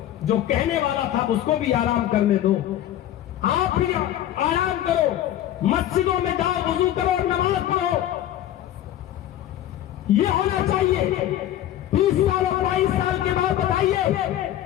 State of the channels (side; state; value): right; quieter; 12.2 dB